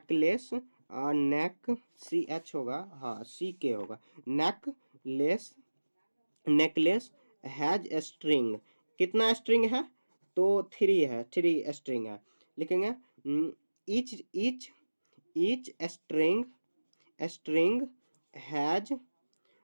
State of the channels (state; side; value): inverted; both; correlation -1.00